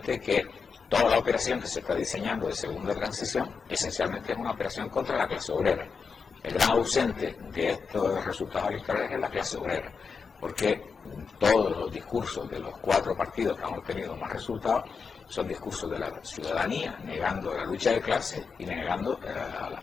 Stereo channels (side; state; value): right; quieter; 5.4 dB